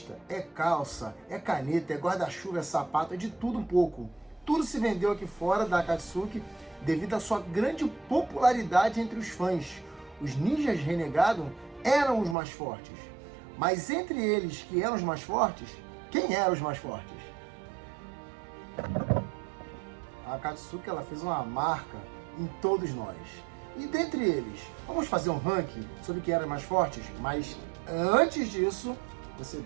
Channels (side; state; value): left; drops out; at 12.4 s